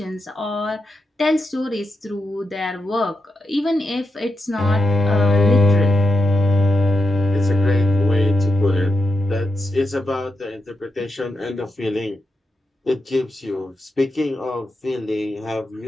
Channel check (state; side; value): normal; both; correlation 0.86